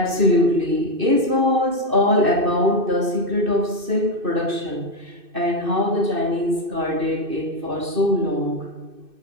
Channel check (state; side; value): late; left; 2.6 ms